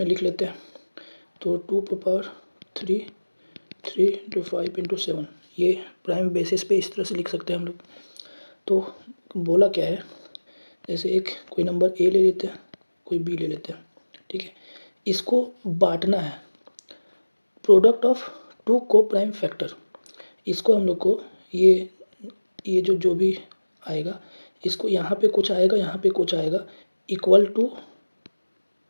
लिख लेते हैं। तो 2 3 इंटू 5 इंटू 7, ये प्राइम बेसिस पे इस तरह से लिख सकते हैं हम लोग। तो बोला क्या है, जैसे एक कोई नंबर ए ले लेते हैं, कोई बी ले लेते हैं। ठीक है, इसको बांटना है, product of two coprime factor. इसको हम लोग को ये जो भी आएगा, इसको यहाँ पे कुछ आएगा, यहाँ पे कुछ आएगा, इक्वल टू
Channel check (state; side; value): inverted; both; correlation -1.00